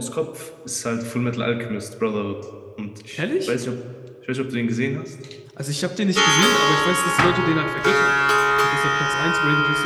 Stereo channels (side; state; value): both; identical; correlation 1.00